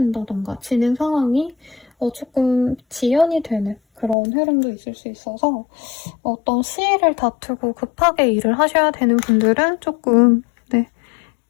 진행 상황이 조금 지연이 되는 그런 흐름도 있을 수 있어서 어떤 시일을 다투고 급하게 일을 하셔야 되는 분들은 조금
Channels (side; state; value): right; drops out; at 4.2 s